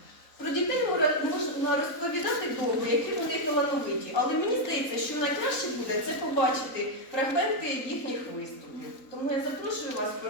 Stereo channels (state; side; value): late; right; 3.9 ms